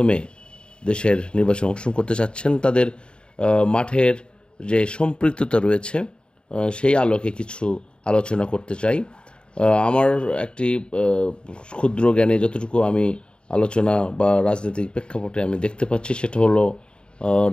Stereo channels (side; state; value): right; late; 0.052 ms